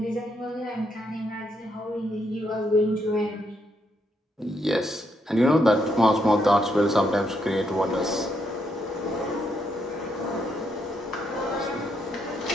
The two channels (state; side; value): normal; both; correlation 0.77